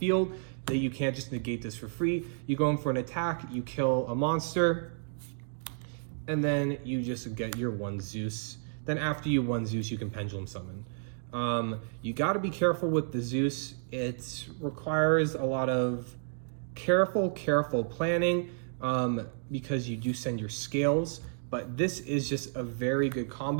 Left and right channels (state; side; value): silent; left; digital silence